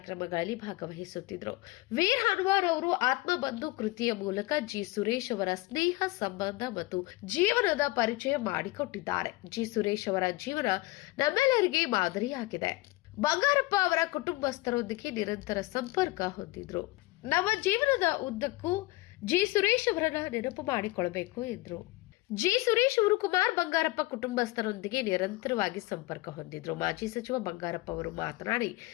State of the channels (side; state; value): right; quieter; 20.3 dB